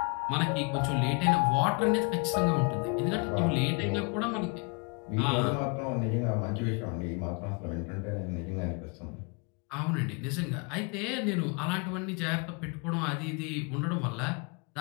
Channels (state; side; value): quieter; right; 32.4 dB